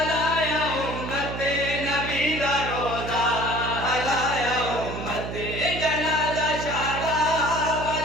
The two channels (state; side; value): noise; right; hum, 6 dB below the sound